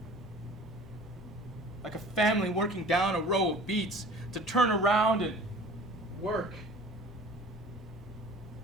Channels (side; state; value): both; normal; correlation 0.45